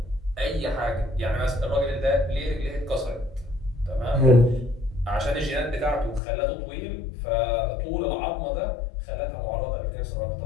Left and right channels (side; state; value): right; drops out; at 6.2 s